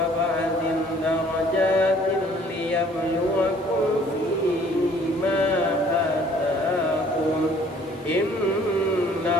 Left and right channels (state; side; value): normal; both; correlation 0.57